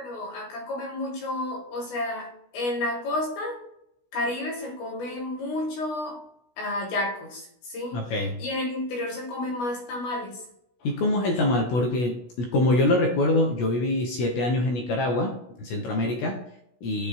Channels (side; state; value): right; late; 16 ms